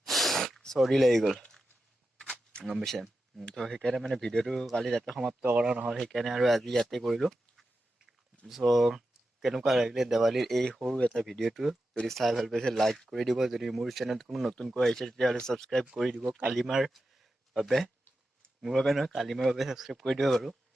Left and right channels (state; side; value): normal; both; correlation 0.90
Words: চৰ্দি লাগি গ'ল, গম পাইছে। তো সেইকাৰণে মানে ভিডিঅ'টো কালি ৰাতি সমাপ্ত কৰা নহ'ল, সেইকাৰণে আৰু আজি ইয়াতে কৰিলোঁ। কেনেকুৱা লাগিলে দেৱালীৰ এই সৰু এটা ভিডিঅ'টো? যদি চাই ভাল পাইছে লাইক কৰি দিব। যদি মোৰ চেনেলত কোনো নতুনকৈ আহিছে তেতিয়াহ'লে ছাবস্ক্ৰাইব কৰি দিব। কালিমাৰ বাবে, মোৰ বাবে নহয়, কালিমাৰ বাবে ছাবস্ক্ৰাইব কৰি দিব বাৰু।